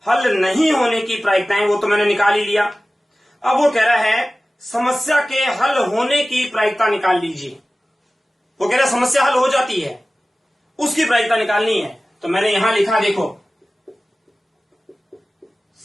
हल नहीं होने की प्रायिकताएं वो तो मैंने निकाल ही लिया। अब वो कह रहा है समस्या के हल होने की प्रायिकता निकाल लीजिए। वो कह रहा है समस्या हल हो जाती है, उसकी प्रायिकता निकालनी है। तो मैंने यहां लिखा, देखो,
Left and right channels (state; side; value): normal; both; correlation 0.97